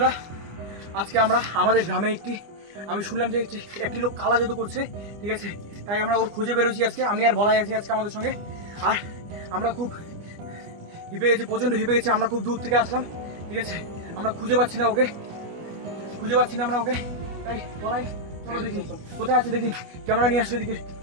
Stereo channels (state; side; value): late; left; 24 ms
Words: আজকে আমরা আমাদের গ্রামে আমি শুনলাম যে একটি লোক কালা জাদু করছে, ঠিক আছে? তাই আমরা ওর খুঁজে বেরোছি আজকে। আমি আর বলাই আছি আজকে আমাদের সঙ্গে। আর আমরা খুব হিপে গেছি, প্রচণ্ড হিপে গেছি। আমরা খুব দূর থেকে আসলাম, ঠিক আছে? আমরা খুঁজে পাচ্ছি না ওকে, আমরা ওকে। তাই বলাই, চলো দেখি কোথায় আছে, দেখি। ক্যামেরা নিয়ে আসো এদিকে।